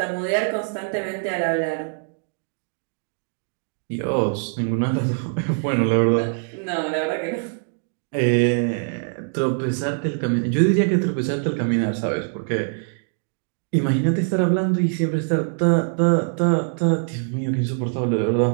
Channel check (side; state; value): left; silent; 63 dB below the other